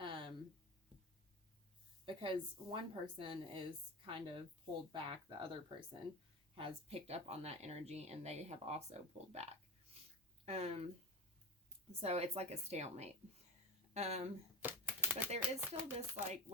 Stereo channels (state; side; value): normal; both; correlation 0.24